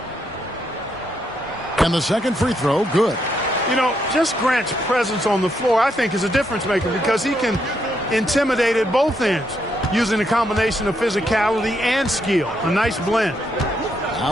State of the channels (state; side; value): normal; both; correlation 0.77